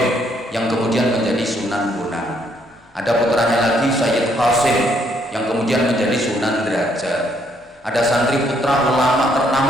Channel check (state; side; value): normal; both; correlation 0.70